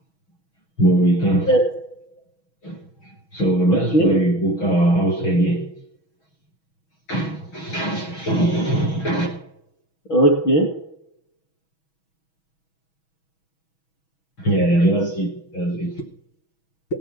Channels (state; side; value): late; right; 6.2 ms